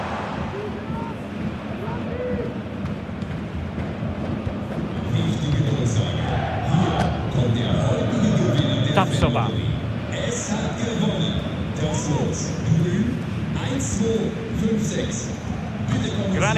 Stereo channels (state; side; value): identical; both; correlation 1.00